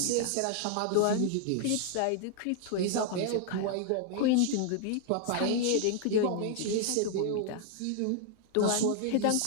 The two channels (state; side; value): different; both; correlation 0.00